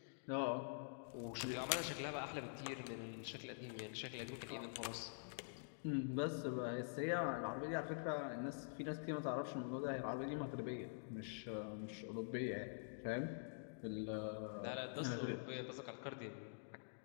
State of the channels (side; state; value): right; silent; digital silence